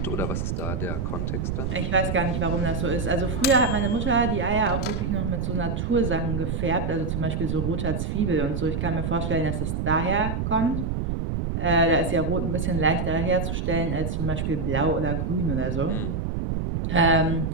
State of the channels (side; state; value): right; noise; rumble, 1 dB below the sound